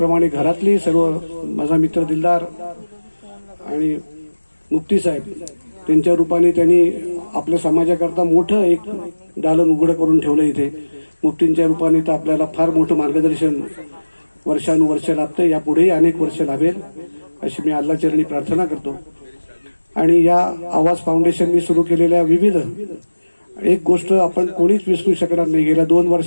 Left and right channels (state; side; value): inverted; both; correlation -1.00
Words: घरातली सर्व, माझा मित्र दिलदार आणि मुफ्ती साहेब, त्यांच्या रूपाने त्यांनी आपल्या समाजाकरता मोठं एक दालन उघडं करून ठेवलं इथे. मुफ्तींच्या रूपाने तर आपल्याला फार मोठं मार्गदर्शन वर्षानुवर्ष लाभतं. यापुढेही अनेक वर्ष लाभेल अशी मी अल्लाचरणी प्रार्थना करतो. आणि या आवाज फाउंडेशनने सुरू केलेल्या विविध, एक गोष्ट आपण कोणीच विसरू शकणार नाही. गेल्या 2